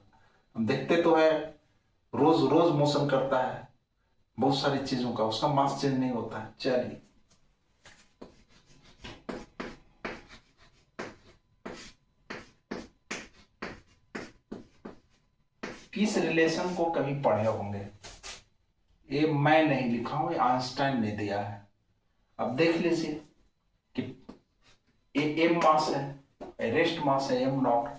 हम देखते तो है रोज रोज मोशन करता है बहुत सारी चीजों का, उसका मास चेंज नहीं होता है। चलिए किस रिलेशन को कभी पढ़े होंगे, ये मैं नहीं लिखा हूं, ये आइंस्टाइन ने दिया है। अब देख लीजिए कि ये एम मास है, रेस्ट मास है m0।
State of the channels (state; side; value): identical; both; correlation 1.00